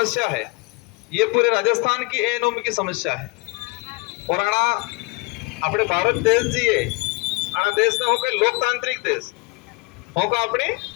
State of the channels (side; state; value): right; quieter; 27.2 dB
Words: है ये पूरे राजस्थान की एनोमी की समस्या है। और आना अपने भारत देश जी है, आना देश ने होकर लोकतांत्रिक देश होगा, अपने